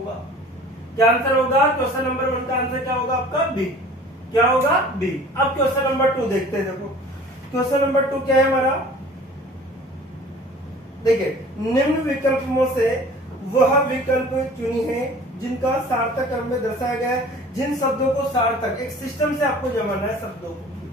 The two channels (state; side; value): normal; both; correlation 0.46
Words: क्या आंसर होगा, क्वेश्चन नंबर 1 का आंसर क्या होगा आपका बी, क्या होगा बी। अब क्वेश्चन नंबर 2 देखते हैं। देखो क्वेश्चन नंबर 2 क्या है हमारा, देखिए निम्न विकल्पों से वह विकल्प चुनी है जिनका सार्थक क्रम में दर्शाया गया है। जिन शब्दों को सार्थक, एक सिस्टम से आपको जमाना है शब्दों